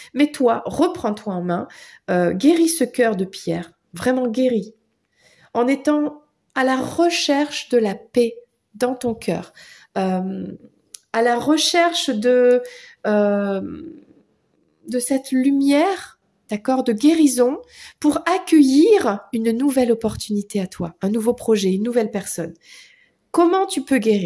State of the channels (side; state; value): both; identical; correlation 1.00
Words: mais toi, reprends-toi en main, guéris ce cœur de pierre, vraiment guéris, en étant à la recherche de la paix dans ton cœur, à la recherche euh, de cette lumière, d'accord, de guérison pour accueillir une nouvelle opportunité à toi, un nouveau projet, une nouvelle personne. Comment tu peux